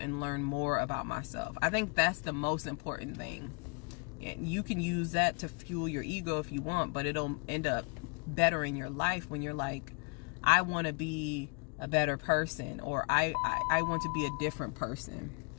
learned more about myself. I think that's the most important thing. And you can use that to fuel your ego if you want, but it'll end up bettering your life when you're like, I want to be a better person, or I want to be a different person.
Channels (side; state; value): right; quieter; 35.1 dB